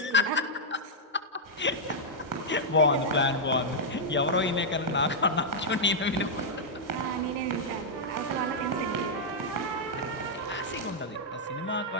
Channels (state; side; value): normal; both; correlation -0.06